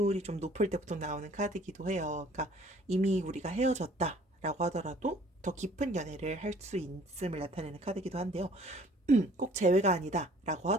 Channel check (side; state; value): both; normal; correlation 0.55